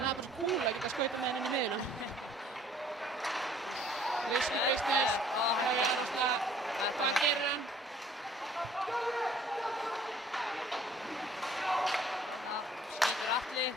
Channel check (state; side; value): normal; both; correlation 0.56